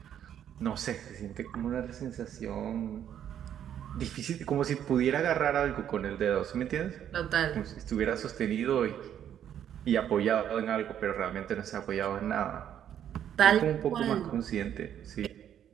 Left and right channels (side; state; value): left; quieter; 9.9 dB